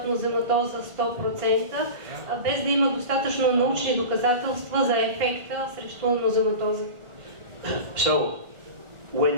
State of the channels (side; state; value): left; late; 1.5 ms